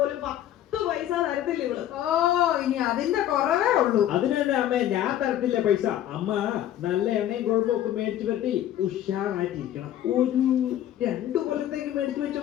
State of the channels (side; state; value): right; quieter; 11.9 dB